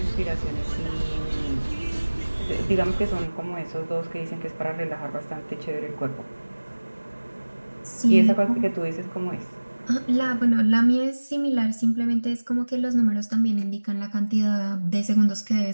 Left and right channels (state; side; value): inverted; both; correlation -1.00